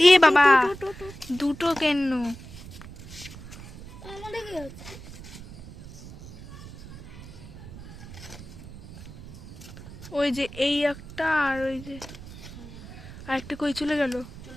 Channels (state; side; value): noise; right; rumble, 15 dB below the sound